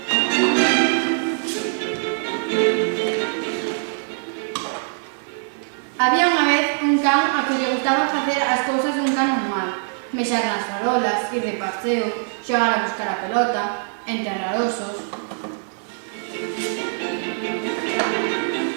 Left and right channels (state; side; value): silent; left; digital silence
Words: Había unha vez un can a que lle gustaba facer as cousas dun can normal. Mexar nas farolas, ir de paseo, xogar a buscar a pelota, enterrar osos.